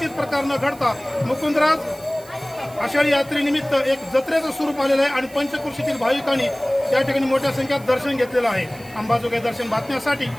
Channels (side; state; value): right; noise; hiss, 22 dB below the sound